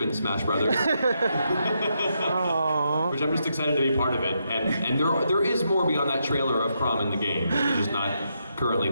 in Smash Brothers. Which I'm just excited to be part of it. And there is more beyond that trailer of Crom in the game. It's just not currently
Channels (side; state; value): both; inverted; correlation -0.80